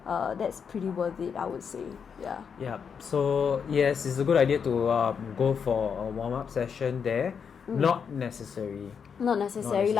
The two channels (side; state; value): right; quieter; 6.7 dB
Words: that's pretty worth it, I would say. Yeah. Yeah. So yes, it's a good idea to go for a warm-up session there. Not necessary. Not necessary